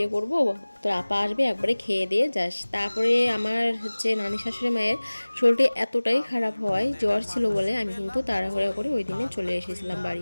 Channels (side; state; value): both; inverted; correlation -1.00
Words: করবো, তোর আপা আসবে, একবারে খেয়ে দিয়ে যাস। তারপরে আমার নানি শাশুড়ি মায়ের শরীরটা এতটাই খারাপ হয়, জ্বর ছিল বলে আমি কিন্তু তাড়াহুড়ো করে ওই দিনে চলে এসেছিলাম